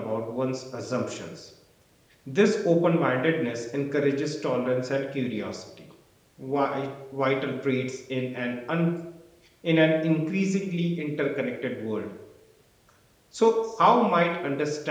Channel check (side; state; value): both; identical; correlation 1.00